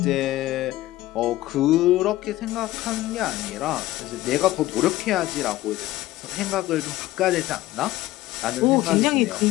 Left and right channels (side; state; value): right; quieter; 16.3 dB